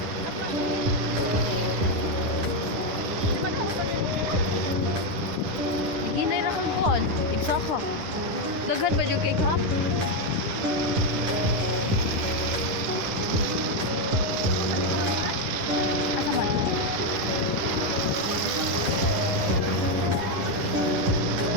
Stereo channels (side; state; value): left; late; 10 ms